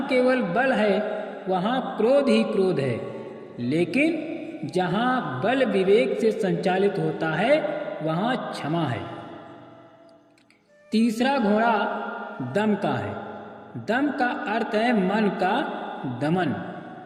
केवल बल है वहाँ क्रोध ही क्रोध है, लेकिन जहाँ बल विवेक से संचालित होता है वहाँ क्षमा है। तीसरा घोड़ा दम का है। दम का अर्थ है मन का दमन।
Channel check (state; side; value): identical; both; correlation 1.00